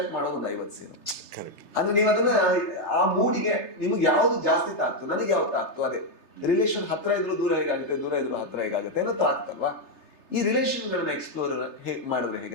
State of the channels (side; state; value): right; late; 3.3 ms